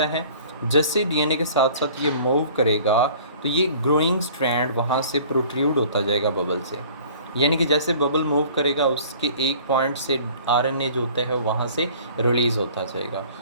है। जैसे डीएनए के साथ साथ ये मूव करेगा तो ये ग्रोइंग स्ट्रैंड वहाँ से प्रोट्रूड होता जाएगा बबल से। यानी कि जैसे बबल मूव करेगा उसके एक पॉइंट से आरएनए जो होता है वहाँ से रिलीज़ होता जाएगा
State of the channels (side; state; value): both; inverted; correlation -0.49